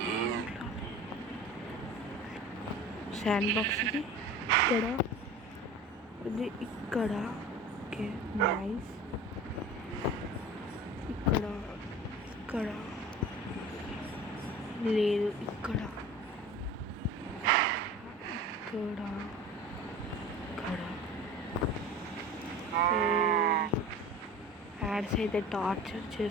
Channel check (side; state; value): both; normal; correlation 0.38